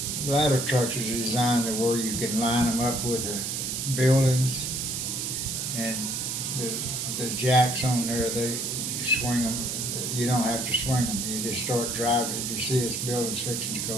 ladder trucks are designed to where you can line them up with the buildings, and the jacks on there, they swing them. You don't have to swing them. You just start driving. If you see this building's fixing to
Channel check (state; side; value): noise; right; hiss, 2 dB below the sound